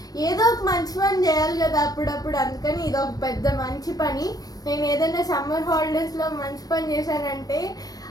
ఏదో ఒక మంచి పని చేయాలి కదా అప్పుడప్పుడు, అందుకని ఇది ఒక పెద్ద మంచి పని. నేను ఏదైనా సమ్మర్ హాలిడేస్లో మంచి పని చేశానంటే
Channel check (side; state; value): right; late; 0.18 ms